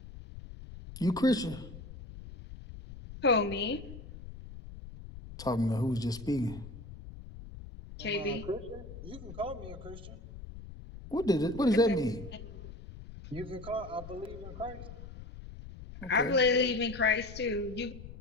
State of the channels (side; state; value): left; noise; rumble, 14 dB below the sound